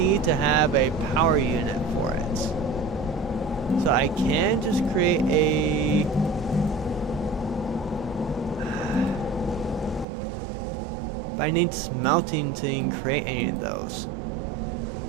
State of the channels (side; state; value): left; drops out; at 10.1 s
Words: to have a power unit for it. So I can just create a... I need smelting to even create any of those.